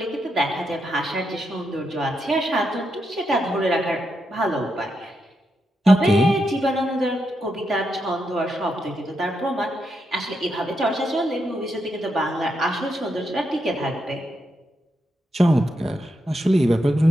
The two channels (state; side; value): normal; both; correlation 0.83